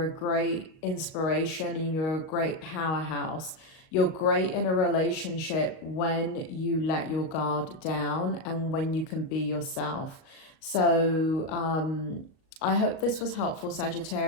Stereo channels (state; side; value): late; right; 38 ms